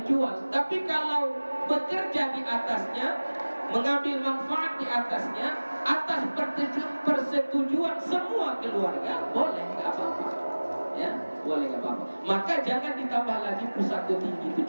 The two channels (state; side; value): inverted; both; correlation -1.00